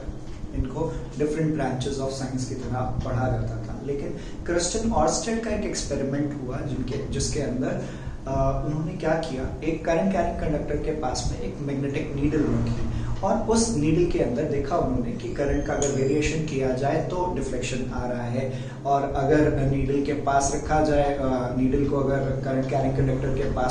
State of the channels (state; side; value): identical; both; correlation 1.00